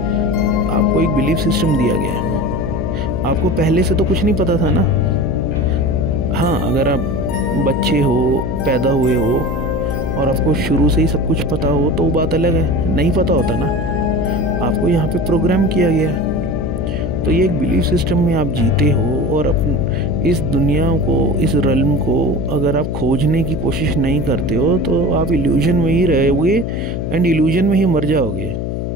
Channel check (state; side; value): noise; left; hum, 3 dB below the sound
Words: आपको एक बिलीफ सिस्टम दिया गया है। आपको पहले से तो कुछ नहीं पता था ना। हाँ, अगर आप बच्चे हो, पैदा हुए हो और आपको शुरू से ही सब कुछ पता हो तो वो बात अलग है। नहीं पता होता ना, आपको यहाँ पे प्रोग्राम किया गया है। तो ये एक बिलीफ सिस्टम में आप जीते हो, और इस दुनिया को, इस रल्म को अगर आप खोजने की कोशिश नहीं करते हो तो आप इल्यूजन में ही रहोगे, एंड इल्यूजन में ही मर जाओगे।